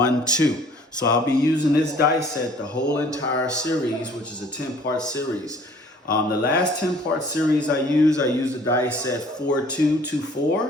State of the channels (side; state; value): both; normal; correlation 0.54